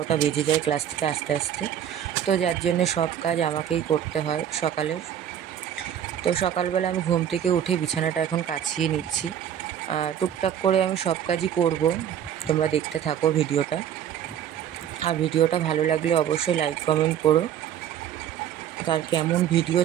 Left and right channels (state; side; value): quieter; left; 9.7 dB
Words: বেজে যায় ক্লাস থেকে আসতে আসতে। তো যার জন্যে সব কাজ আমাকেই করতে হয় সকালের। তো সকালবেলা আমি ঘুম থেকে উঠে বিছানাটা এখন কাচিয়ে নিচ্ছি। টুকটাক করে আমি সব কাজই করব, তোমরা দেখতে থাকো ভিডিওটা। আর ভিডিওটা ভালো লাগলে অবশ্যই লাইক কমেন্ট করো। আর কেমন ভিডিও